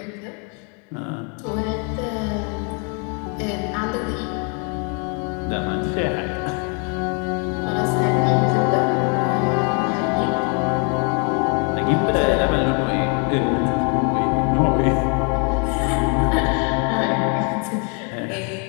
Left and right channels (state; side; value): quieter; right; 36.1 dB